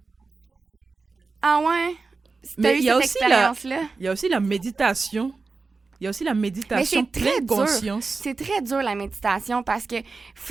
Moi aussi, j'ai de la difficulté avec ça. Ouais. Mais il y a aussi la méditation. Il y a aussi la méditation pleine conscience. C'est très dur, la méditation, parce que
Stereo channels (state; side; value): quieter; left; 4.1 dB